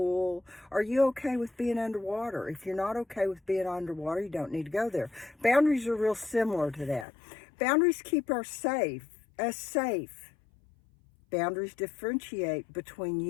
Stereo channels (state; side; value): drops out; right; at 7.1 s